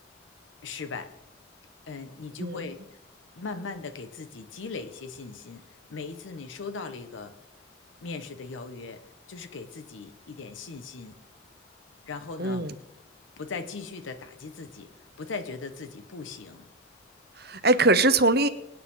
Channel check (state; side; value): normal; both; correlation 0.05